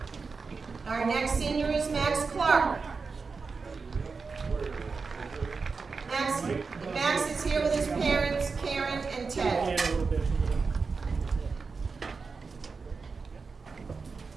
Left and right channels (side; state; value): left; quieter; 4.7 dB